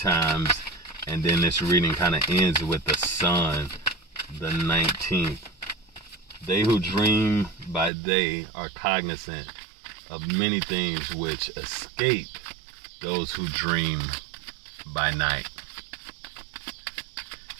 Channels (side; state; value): left; drops out; at 7.9 s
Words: and then this reading kind of ends with the sun, the 19th. They who dream by day are cognizant of many things which escape those who dream by night.